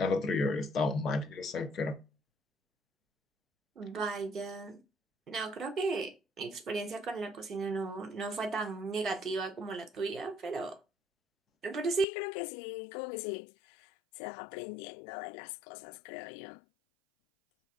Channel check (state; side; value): drops out; right; at 12.1 s